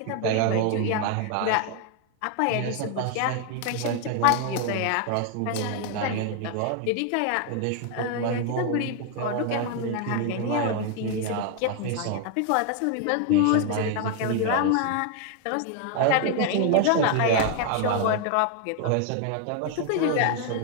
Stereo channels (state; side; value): different; both; correlation 0.00